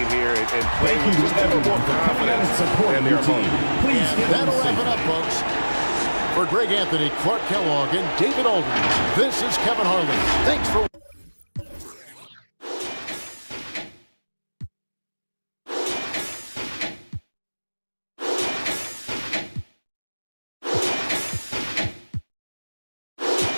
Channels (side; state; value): both; inverted; correlation -1.00